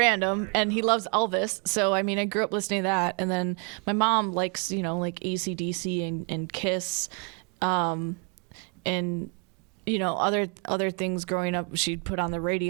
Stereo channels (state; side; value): quieter; left; 37.5 dB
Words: And he loves Elvis. So, I grew up listening to that. And then my mom likes, like AC/DC and Kiss. And, other things growing up she'd put on the